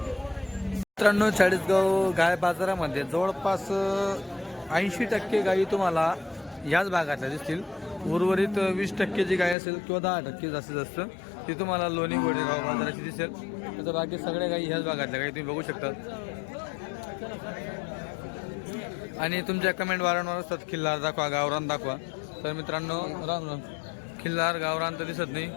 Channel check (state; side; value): drops out; right; at 9.6 s